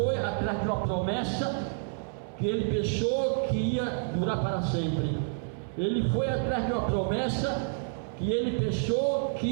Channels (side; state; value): left; silent; 59 dB below the other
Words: atrás de uma promessa que ele pensou que ia durar para sempre. Ele foi atrás de uma promessa que ele pensou